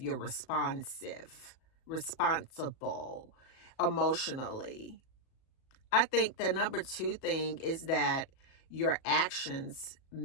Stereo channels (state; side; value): late; right; 37 ms